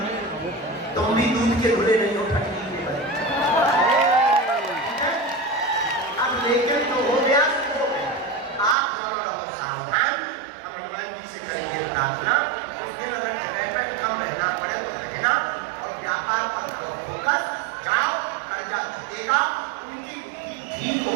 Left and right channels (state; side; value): drops out; left; at 8.8 s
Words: है, तुम भी दूध के धुले नहीं हो, ठंडी के बने। अब लेकिन तो हो गया, आप दोनों रहो सावधान। हम हनुमान जी से करेंगे प्रार्थना, इस दिन अगर जगह पर कम रहना पड़े तो रहना, और व्यापार पर फोकस, जाओ, कर्जा चुकेगा, उनकी बुद्धि ठीक